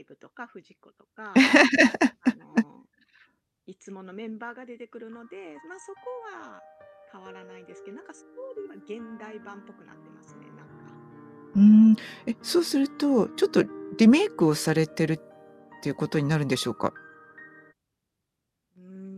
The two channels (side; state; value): both; identical; correlation 1.00